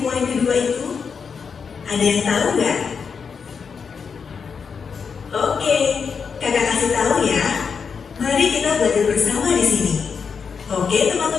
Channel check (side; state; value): right; quieter; 6.0 dB